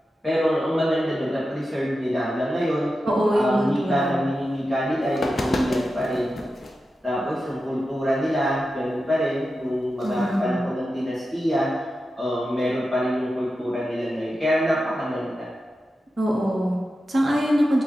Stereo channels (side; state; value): both; normal; correlation 0.91